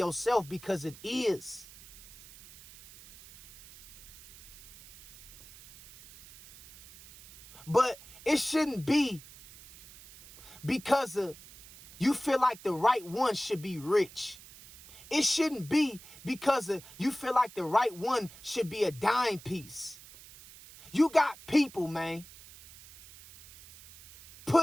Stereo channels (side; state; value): right; noise; hiss, 20 dB below the sound